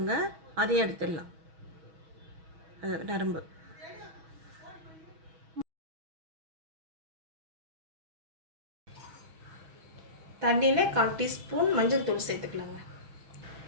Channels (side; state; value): left; late; 6.2 ms